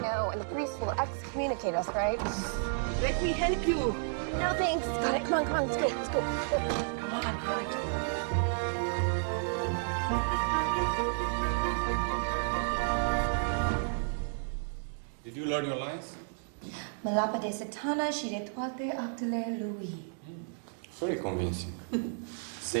know, and the priest will excommunicate us, right? Let me help you. No thanks. Got it. Come on, let's go. Let's go. Come on, all right. Did you learn your lines? Mă lapă de satana și de toate actele lui. Very convincing.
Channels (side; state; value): left; silent; digital silence